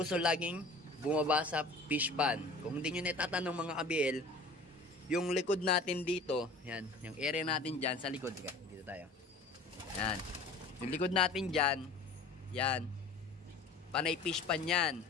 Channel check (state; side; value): quieter; right; 3.1 dB